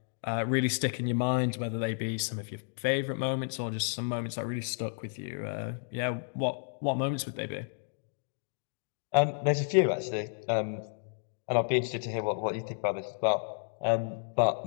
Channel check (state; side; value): silent; right; digital silence